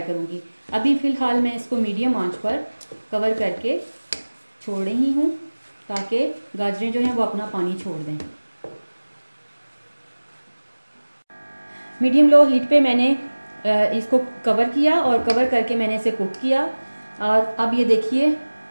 करूंगी। अभी फ़िलहाल मैं इसको मीडियम आंच पर कवर करके छोड़ रही हूँ, ताकि गाजरें जो हैं वो अपना पानी छोड़ दें। मीडियम लो हीट पे मैंने इसको कवर किया और कवर करके मैंने इसे कुक किया। और अब ये देखिए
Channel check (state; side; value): inverted; both; correlation -1.00